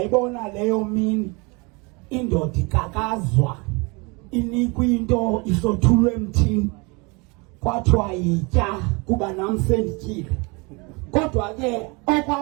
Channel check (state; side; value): quieter; left; 28.7 dB